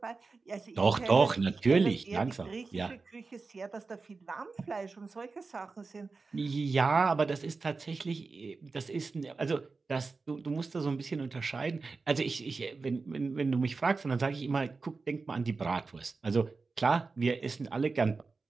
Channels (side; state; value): left; quieter; 4.2 dB